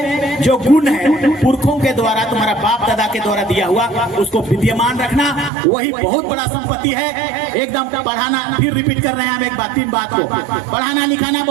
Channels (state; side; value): drops out; left; at 5.5 s